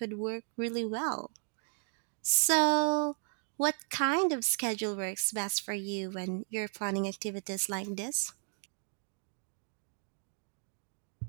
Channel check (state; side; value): silent; left; 55 dB below the other